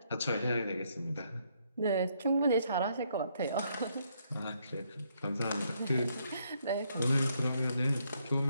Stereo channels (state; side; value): inverted; both; correlation -0.73